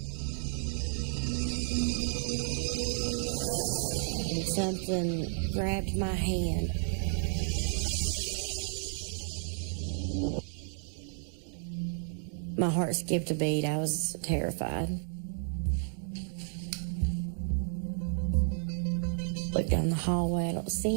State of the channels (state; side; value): silent; left; 56 dB below the other